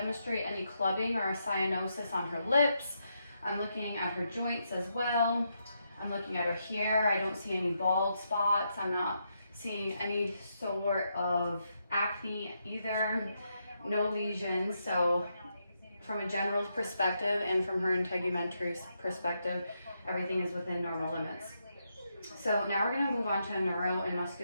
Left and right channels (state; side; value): inverted; both; correlation -0.81